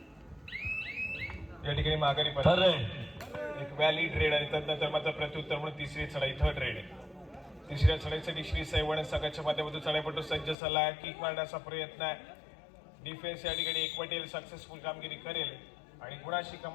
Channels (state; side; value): drops out; right; at 10.6 s